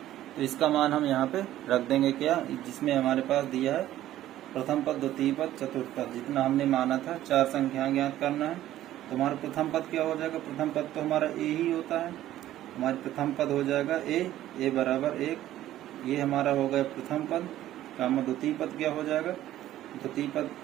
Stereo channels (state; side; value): quieter; left; 13.5 dB